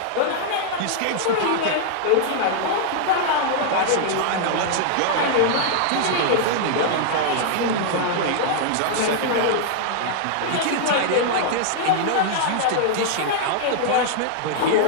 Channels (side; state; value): both; different; correlation -0.01